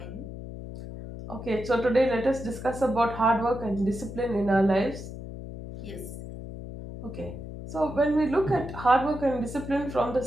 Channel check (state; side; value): noise; left; hum, 10 dB below the sound